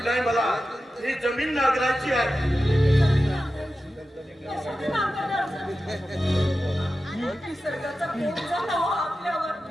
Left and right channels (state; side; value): normal; both; correlation 0.93